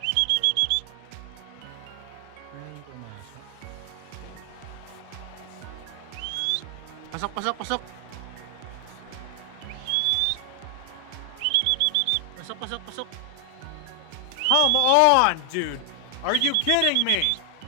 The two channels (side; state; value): both; different; correlation 0.00